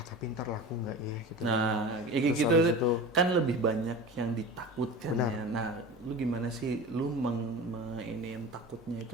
ntar laku nggak ya gitu. Nah, gitu kan lebih banyak yang ditakutkan ya. Nah, lu gimana sih, lu yang takutnya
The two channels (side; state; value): both; normal; correlation 0.32